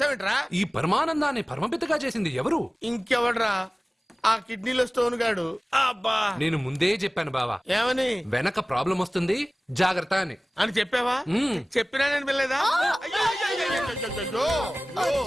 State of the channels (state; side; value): normal; both; correlation 0.98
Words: ఈ పరమానందాన్ని పరమపితగా చేసింది ఎవరు? ఇంకెవడ్రా? ఆ కిడ్నీలో స్టోన్ గాడు. అబ్బా నేను ముందే చెప్పాను బావా. ఏమని? వెనక ప్రాబ్లం వస్తుంది జాగ్రత్త అని. అని చెప్పావా? చెప్పినా నేను వెళ్ళలేదా?